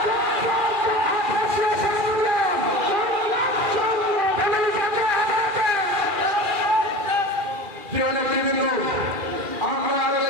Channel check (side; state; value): left; late; 2.4 ms